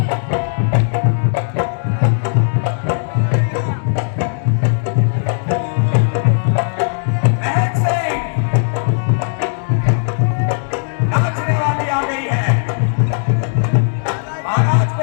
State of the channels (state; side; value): silent; right; 67 dB below the other